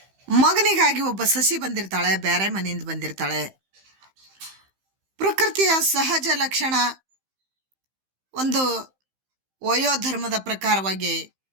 ಮಗನಿಗಾಗಿ ಒಬ್ಬ ಸಸಿ ಬಂದಿರ್ತಾಳೆ, ಬೇರೆ ಮನೆಯಿಂದ ಬಂದಿರ್ತಾಳೆ. ಪ್ರಕೃತಿಯ ಸಹಜ ಲಕ್ಷಣ ಒಂದು ವಯೋಧರ್ಮದ ಪ್ರಕಾರವಾಗಿ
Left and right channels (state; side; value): late; left; 15 ms